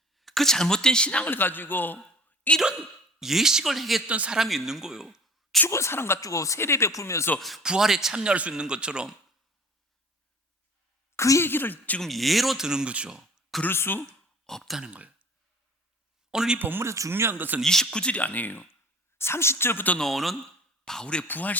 그 잘못된 신앙을 가지고 이런 예식을 행했던 사람이 있는 거예요. 죽은 사람 가지고 세례 베풀면서 부활에 참여할 수 있는 것처럼 그 얘기를 지금 예로 드는 거죠. 그럴 수 없다는 거예요. 오늘 이 본문에서 중요한 것은 29절이 아니에요. 30절부터 나오는 바울의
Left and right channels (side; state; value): both; normal; correlation 0.45